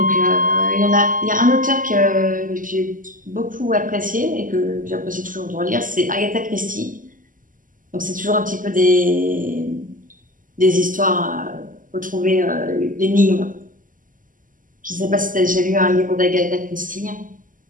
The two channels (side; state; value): left; late; 0.39 ms